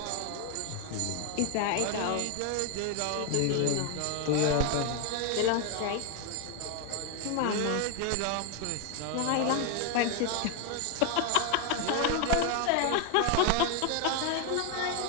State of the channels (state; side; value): different; both; correlation 0.01